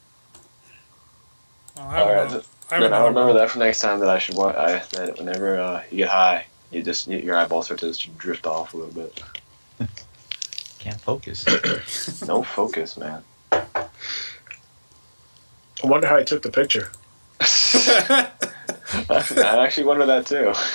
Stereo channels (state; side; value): inverted; both; correlation -1.00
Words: I remember that for next time that I should want. That whenever you get high, your eyeballs start to just drift off a little bit. Can't focus. No focus, man. I wonder how he took the picture. I actually wonder that too.